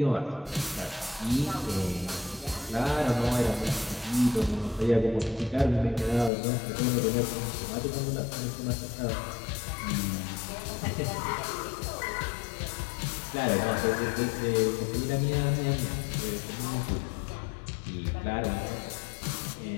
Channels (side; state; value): right; drops out; at 6.3 s